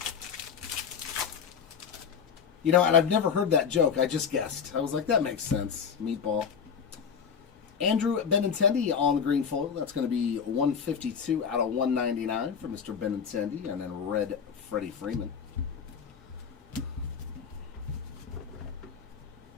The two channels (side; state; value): right; quieter; 6.8 dB